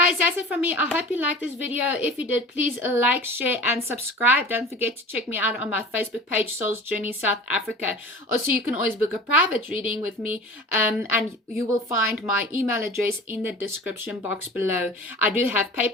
that's it from me. I hope you liked this video. If you did, please like, share, and subscribe. Don't forget to check me out on my Facebook page, Soul's Journey South Africa. Also, you can always book a private reading with me, and you will find my email address in the description box below. I do have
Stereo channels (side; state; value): both; normal; correlation 0.39